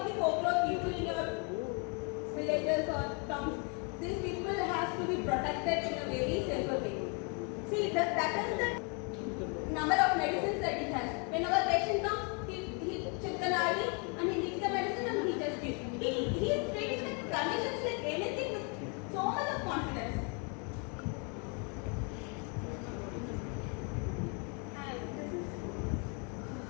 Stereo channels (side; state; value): right; quieter; 35.9 dB